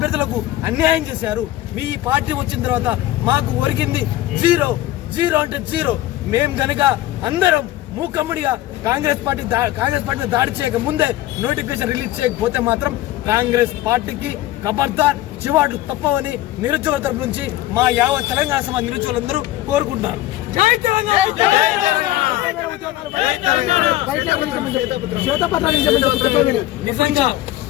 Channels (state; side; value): quieter; right; 15.3 dB